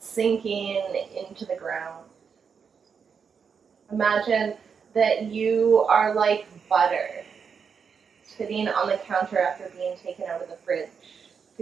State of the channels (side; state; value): left; quieter; 6.3 dB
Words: into the ground. Imagine that you are like butter sitting on the counter after being taken out of the fridge.